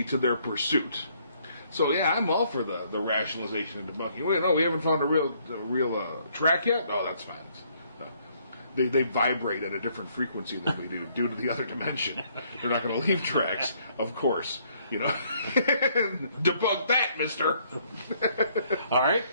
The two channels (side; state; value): both; inverted; correlation -0.67